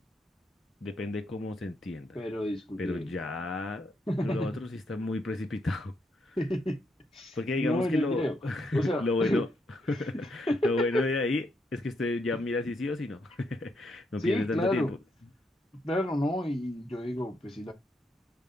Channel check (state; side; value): normal; both; correlation 0.78